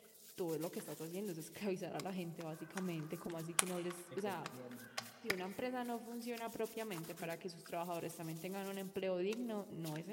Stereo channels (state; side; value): identical; both; correlation 1.00